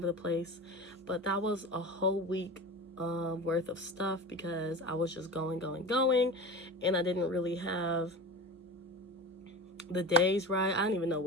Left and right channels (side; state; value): both; normal; correlation 0.30